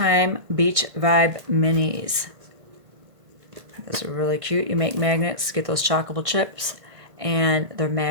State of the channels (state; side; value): late; left; 1.6 ms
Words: Beach Vibe Minis. Those are really cute. You make magnets, get those chalkable chips, and they're